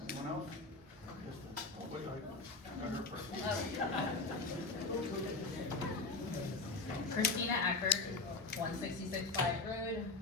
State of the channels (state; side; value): quieter; right; 3.6 dB